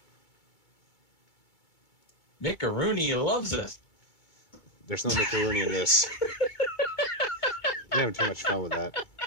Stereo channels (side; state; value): right; late; 2.3 ms